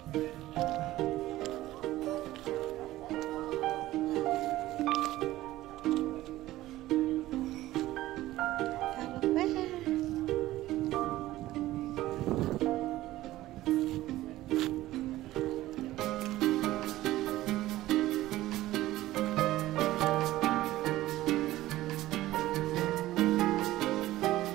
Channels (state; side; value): quieter; left; 15.9 dB